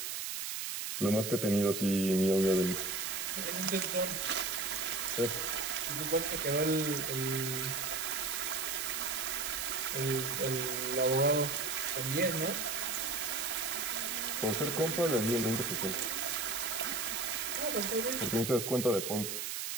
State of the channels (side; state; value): right; noise; hiss, 3 dB below the sound